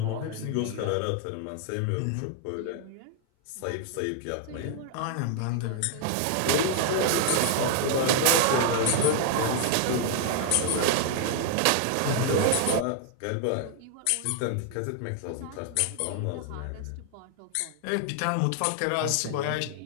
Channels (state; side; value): different; both; correlation 0.00